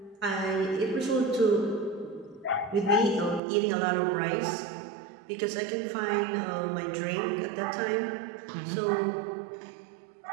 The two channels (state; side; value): drops out; left; at 3.4 s